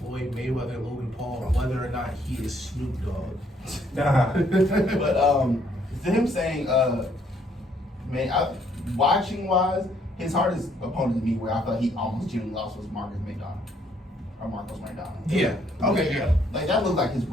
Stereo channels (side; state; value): both; normal; correlation 0.67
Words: Mayweather, Logan Paul, whether or not he is Snoop Dogg. Nah. But to him saying, watching wise, his hardest opponent to me, where I felt he almost genuinely lost, was Marcus McDonald. Or Marcos McDonald. Yeah. Okay. Yeah. Like that looked like his